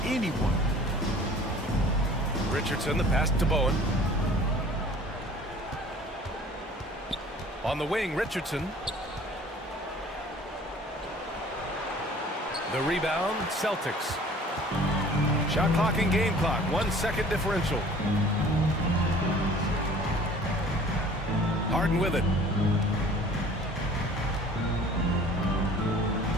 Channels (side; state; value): both; normal; correlation 0.49